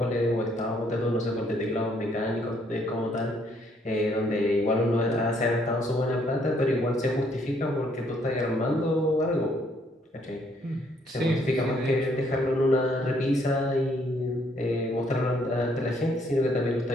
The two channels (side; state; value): both; normal; correlation 0.68